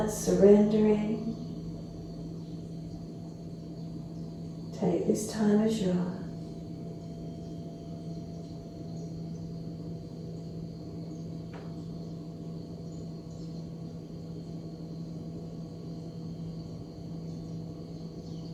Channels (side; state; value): both; identical; correlation 1.00